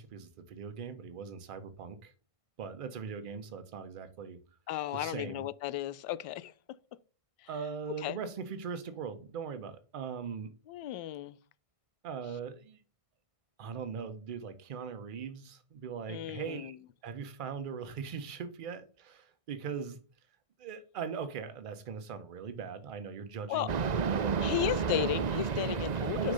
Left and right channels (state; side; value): late; left; 1.6 ms